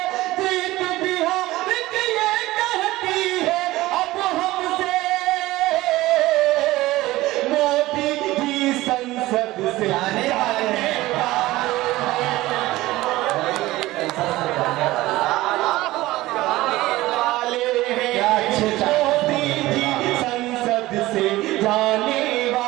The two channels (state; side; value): quieter; left; 17.8 dB